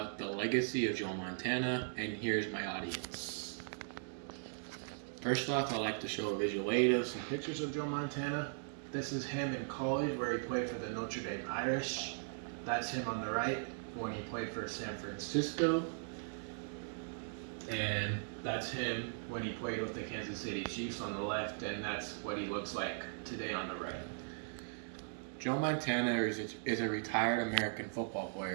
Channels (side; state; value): left; silent; digital silence